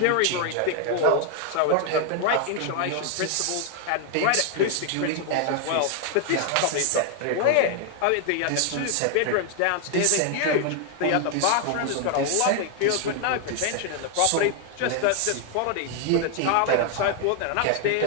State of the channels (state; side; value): different; both; correlation 0.00